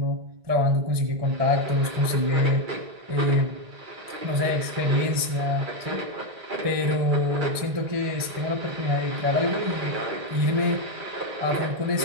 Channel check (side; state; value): left; late; 1.2 ms